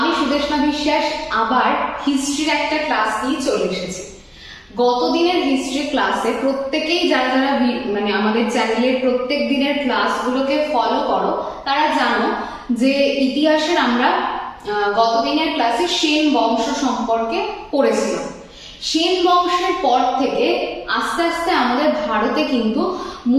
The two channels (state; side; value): identical; both; correlation 1.00